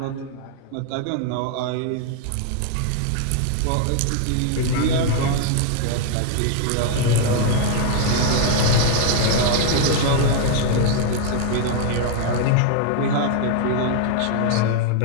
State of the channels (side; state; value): both; different; correlation 0.00